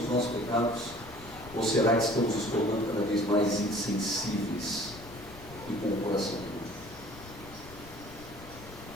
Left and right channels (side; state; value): left; noise; rumble, 17 dB below the sound